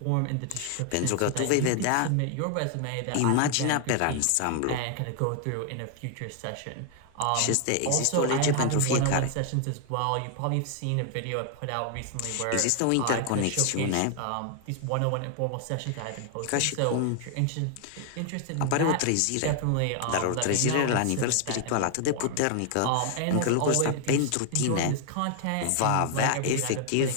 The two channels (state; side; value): different; both; correlation 0.00